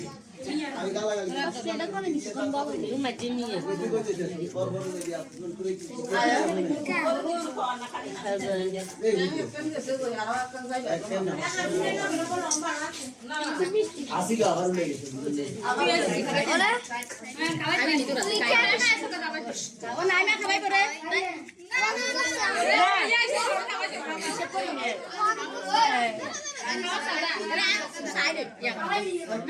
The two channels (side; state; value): both; identical; correlation 1.00